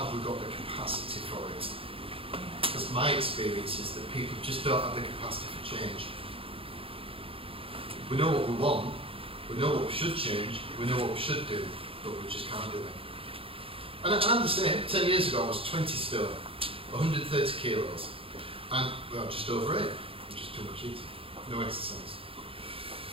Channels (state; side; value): late; left; 0.27 ms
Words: we got the capacity for it? Because my experience is that people just don't have the capacity for change. We know what we want, we know what we should change, we know what we should do, but we just can't do it. And I'm the same. 10 years ago I was 20 stone, 130 kilos, and well, just over it, just too much eating, no exercise.